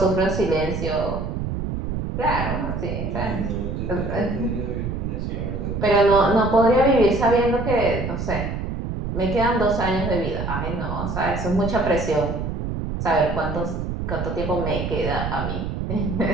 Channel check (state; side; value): noise; right; rumble, 4 dB below the sound